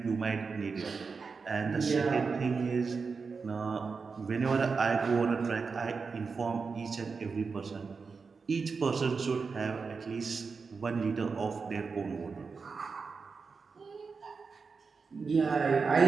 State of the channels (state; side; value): quieter; left; 4.9 dB